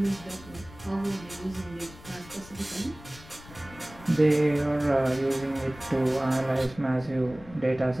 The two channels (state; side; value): noise; left; rumble, 19 dB below the sound